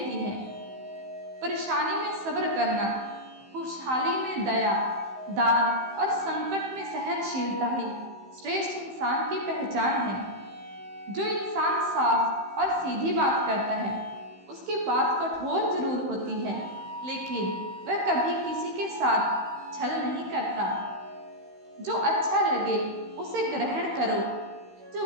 है। परेशानी में सब्र करना, खुशहाली में दया, दान और संकट में सहनशीलता ही श्रेष्ठ इंसान की पहचान है। जो इंसान साफ और सीधी बात करता है उसकी बात कठोर जरूर होती है, लेकिन वह कभी किसी के साथ छल नहीं करता। जो अच्छा लगे उसे ग्रहण करो,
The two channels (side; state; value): left; late; 15 ms